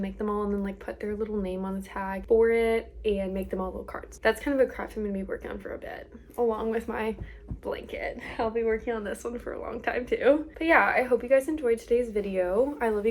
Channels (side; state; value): both; identical; correlation 1.00